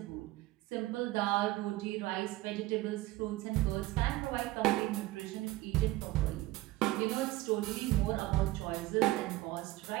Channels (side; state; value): left; quieter; 18.0 dB